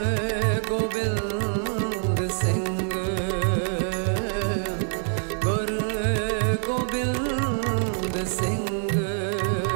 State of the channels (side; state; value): left; silent; digital silence